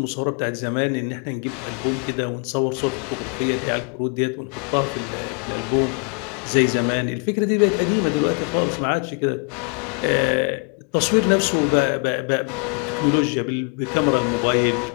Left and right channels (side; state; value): right; quieter; 37.4 dB